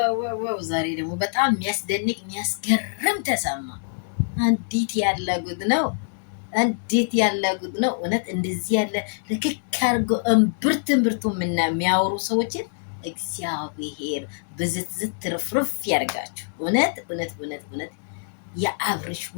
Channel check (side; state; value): right; silent; 62 dB below the other